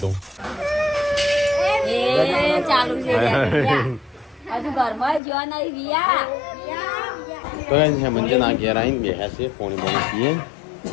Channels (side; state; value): right; drops out; at 5.2 s